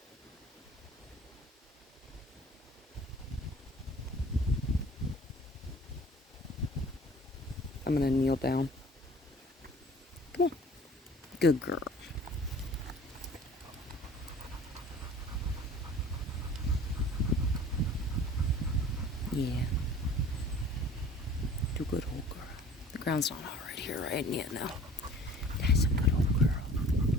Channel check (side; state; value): both; normal; correlation 0.47